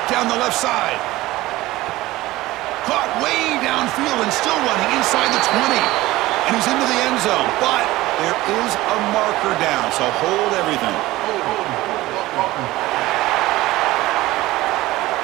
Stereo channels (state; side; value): quieter; left; 17.9 dB